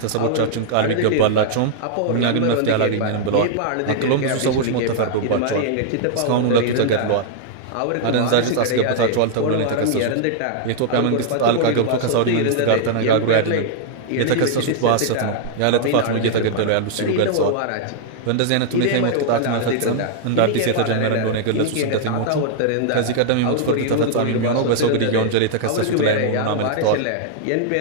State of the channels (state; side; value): different; both; correlation -0.01